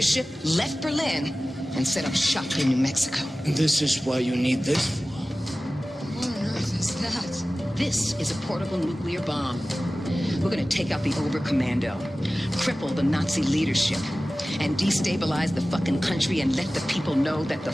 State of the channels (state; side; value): normal; both; correlation 0.97